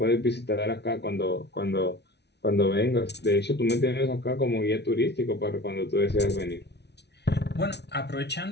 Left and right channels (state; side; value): late; right; 0.50 ms